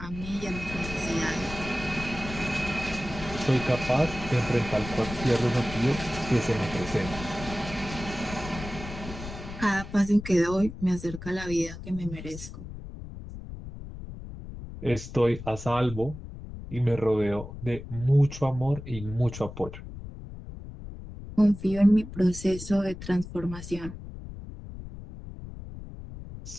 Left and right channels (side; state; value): left; noise; rumble, 11 dB below the sound